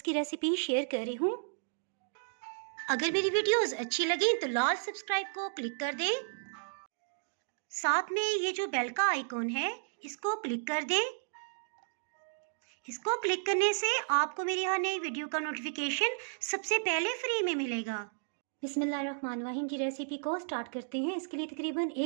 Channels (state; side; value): silent; left; digital silence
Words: की रेसिपी शेयर कर रही हूँ। अगर मेरी वीडियोस अच्छी लगी तो लाल सब्सक्राइब को क्लिक कर दें। साथ में ये जो बेल का आइकॉन है इसको क्लिक कर दें। इसको क्लिक करने से आपको मेरी हर नई वीडियो का नोटिफिकेशन सबसे पहले फ्री में मिलेगा। बिस्मिल्लाहिर्रहमानिर्रहीम की रेसिपी को स्टार्ट करते हैं। इसके लिए तकरीबन